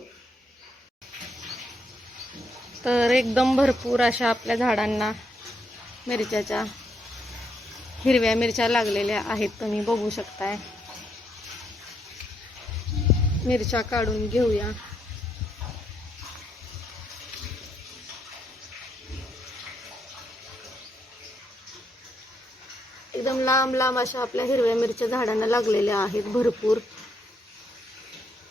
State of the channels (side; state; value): both; normal; correlation 0.76